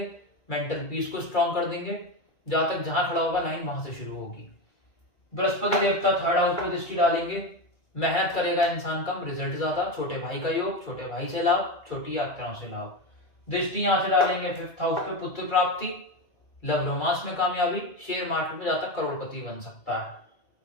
मेंटल पीस को स्ट्रॉन्ग कर देंगे। जहां तक जहां खड़ा होगा लाइन वहां से शुरू होगी। बृहस्पति देवता 3rd हाउस पे दृष्टि डालेंगे, मेहनत करेगा इंसान कम, रिजल्ट ज्यादा। छोटे भाई का योग, छोटे भाई से लाभ, छोटी यात्राओं से लाभ। दृष्टि यहां से डालेंगे 5th हाउस पे, पुत्र प्राप्ति, लव रोमांस में कामयाबी, शेयर मार्केट में जाकर करोड़पति बन सकता है।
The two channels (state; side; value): late; right; 2.3 ms